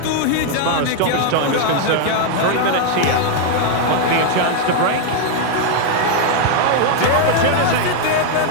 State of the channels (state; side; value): different; both; correlation 0.00